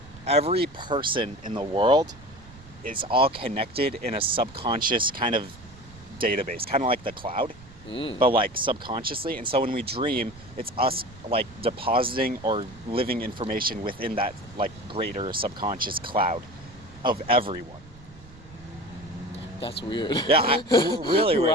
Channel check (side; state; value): right; noise; rumble, 20 dB below the sound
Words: every person in the world is all connected in a subconscious kind of database, kind of like the cloud, but like subconsciously. And so when we dream, it's us like depositing or living information within that like greater subconscious cloud of everyone. That's weird. Yeah, really weird.